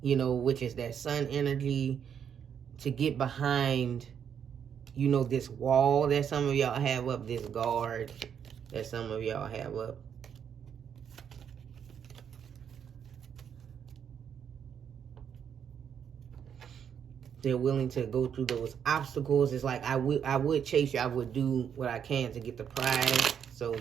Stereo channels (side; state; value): left; quieter; 8.1 dB